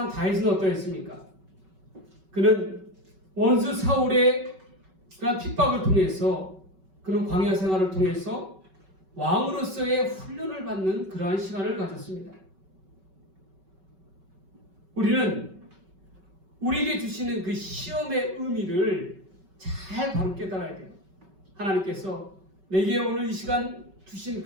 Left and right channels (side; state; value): left; late; 5.3 ms